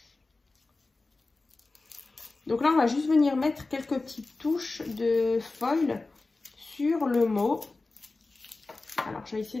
Donc là, on va juste venir mettre quelques petites touches de foil sur le mot. Alors, je vais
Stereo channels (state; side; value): quieter; right; 3.4 dB